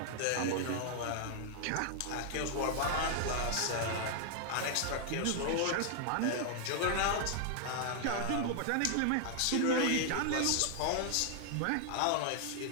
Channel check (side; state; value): both; different; correlation 0.00